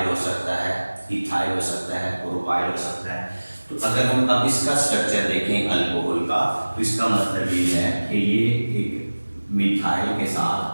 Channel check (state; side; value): inverted; both; correlation -1.00